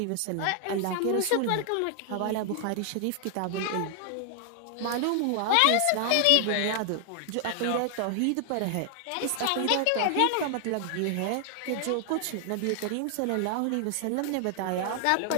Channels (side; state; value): both; different; correlation 0.00